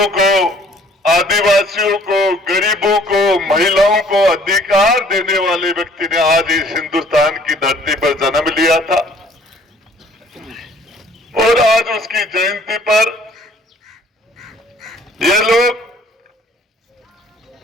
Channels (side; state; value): both; normal; correlation 0.57